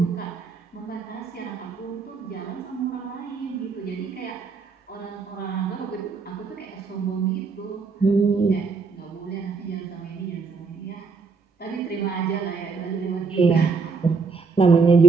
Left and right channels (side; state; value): left; quieter; 4.7 dB